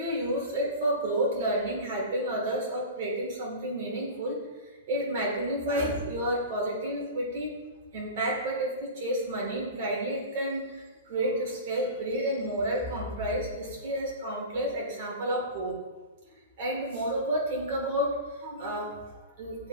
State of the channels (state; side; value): inverted; both; correlation -0.31